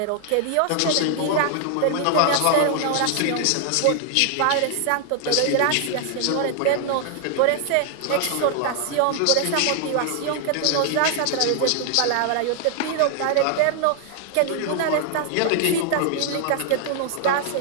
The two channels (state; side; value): different; both; correlation 0.00